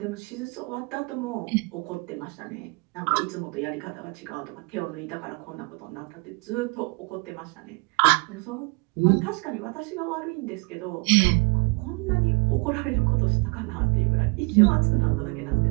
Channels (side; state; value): left; quieter; 29.6 dB